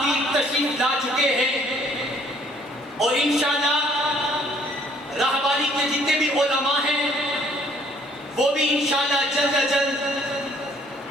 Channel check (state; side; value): normal; both; correlation 0.61